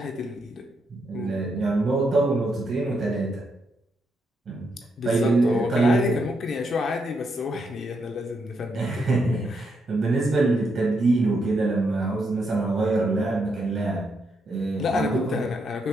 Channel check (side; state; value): both; normal; correlation 0.79